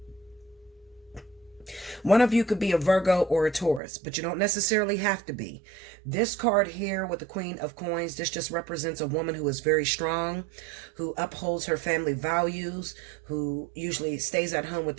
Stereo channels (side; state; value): left; drops out; at 3.8 s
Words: One of you could be a Virgo or a Taurus, but you don't necessarily have to be. This card here with the Queen of Coins, this just represents a woman who is very strong, who upholds her family values, who usually stays at home with